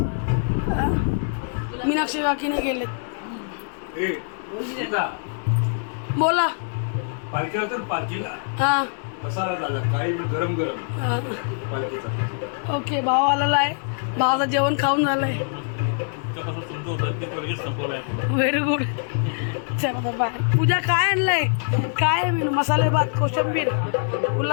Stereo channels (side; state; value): right; silent; digital silence